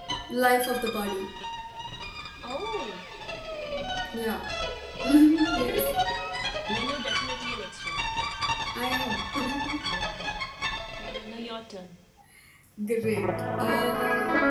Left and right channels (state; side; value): identical; both; correlation 1.00